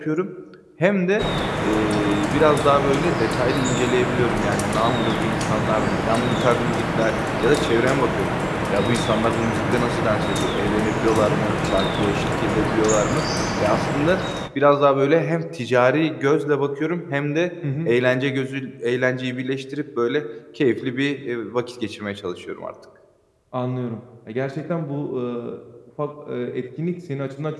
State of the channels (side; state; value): both; identical; correlation 1.00